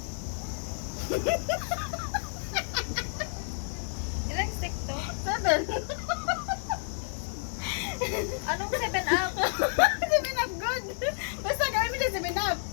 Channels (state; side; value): silent; right; 58 dB below the other